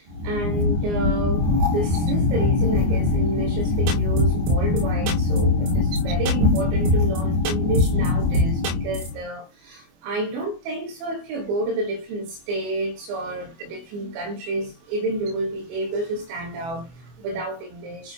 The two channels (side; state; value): left; late; 24 ms